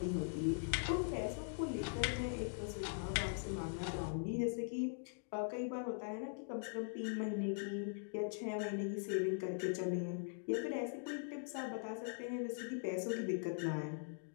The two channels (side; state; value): right; silent; digital silence